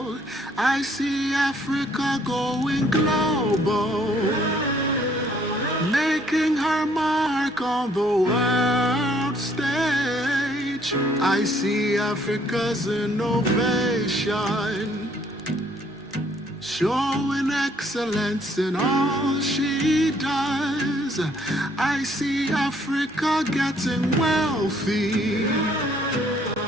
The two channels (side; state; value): right; noise; hum, 30 dB below the sound